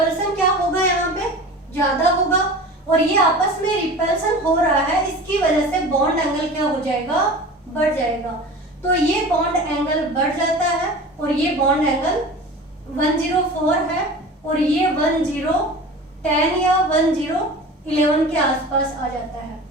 क्या होगा, यहाँ पे ज्यादा होगा और ये आपस में रिपल्सन हो रहा है, इसकी वजह से बॉन्ड एंगल क्या हो जाएगा, बढ़ जाएगा। तो ये बॉन्ड एंगल बढ़ जाता है और ये बॉन्ड एंगल 104 है और ये 1010 या 1011 के आसपास आ जाता है।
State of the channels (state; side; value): normal; both; correlation 0.36